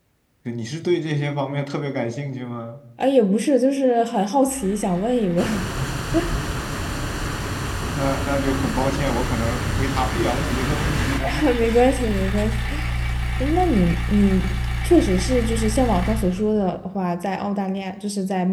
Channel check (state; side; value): identical; both; correlation 1.00